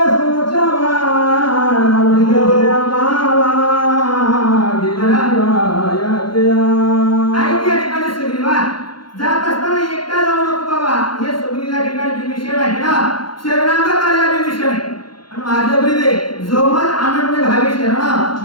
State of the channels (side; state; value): right; late; 0.72 ms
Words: सुरक्षा माझ्या ब्रिदे जोमल आनंद भावी